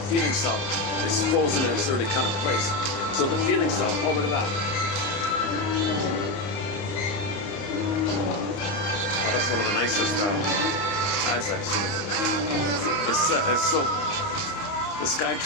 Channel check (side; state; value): right; late; 30 ms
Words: self is frozen in its early kind of place. So the feeling self, oh, look at that. Well, that's one of the nicest ads I've seen. It's so, the